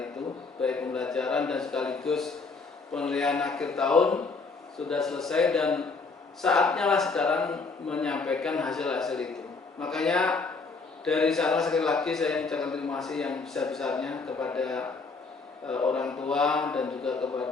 baik pembelajaran dan sekaligus penilaian akhir tahun sudah selesai, dan saatnya lah sekarang menyampaikan hasil-hasil itu. Makanya dari sana sekali lagi saya mengucapkan terima kasih yang besar-besarnya kepada orang tua dan juga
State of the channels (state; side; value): quieter; right; 4.2 dB